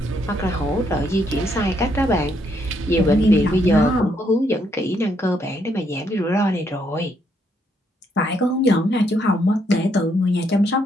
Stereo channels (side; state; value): both; normal; correlation 0.74